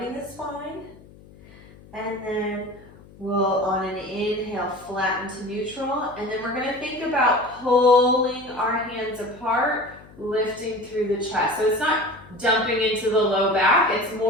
the spine. And then we'll, on an inhale, flatten to neutral. And then we're gonna think about pulling our hands apart, lifting through the chest. So it's not dumping into the low back, it's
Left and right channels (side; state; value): left; noise; hum, 23 dB below the sound